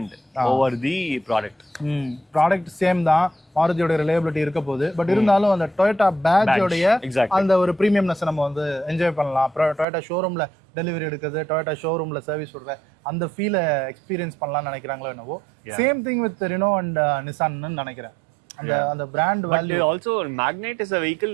over the product. Product same தான், மாருதியோட reliability இருக்க போகுது. But இருந்தாலும் அந்த Toyota பேட்ஜோடைய அந்த ஒரு ப்ரீமியம்னஸ் நம்ம வந்து என்ஜாய் பண்ணலாம். டொயோட்டா ஷோரூம்ல டெலிவரி எடுக்கிறது, டொயோட்டா ஷோரூம்ல சர்வீஸ் விடுற அந்த ஃபீலை எக்ஸ்பீரியன்ஸ் பண்ணலாம்னு நினைக்கிறாங்களோ என்னவோ. Same thing with Renault and நிசான்னு நினைக்கிறேன். அந்த brand value. Also Magnite is a vehicle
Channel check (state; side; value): drops out; left; at 9.9 s